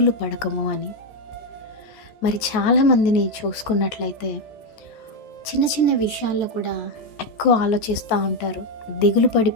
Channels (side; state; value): right; late; 14 ms